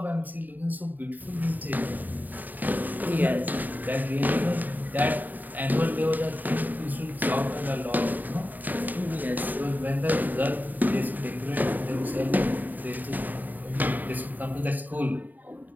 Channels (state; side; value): late; left; 0.086 ms